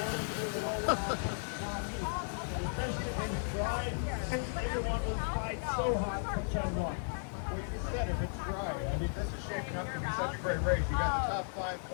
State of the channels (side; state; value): right; silent; digital silence